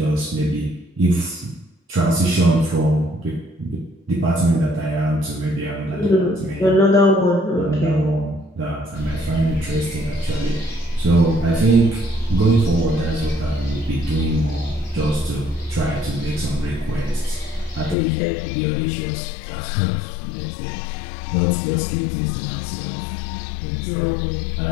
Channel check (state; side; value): drops out; right; at 17.9 s